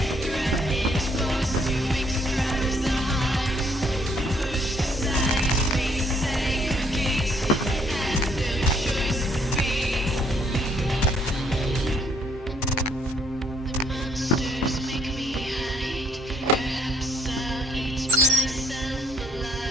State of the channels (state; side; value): normal; both; correlation 0.65